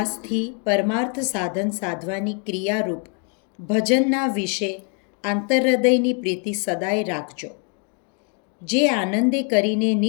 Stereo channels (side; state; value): right; quieter; 39.6 dB